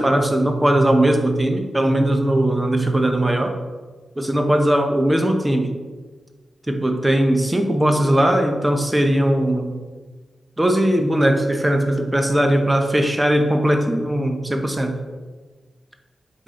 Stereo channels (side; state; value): both; normal; correlation 0.94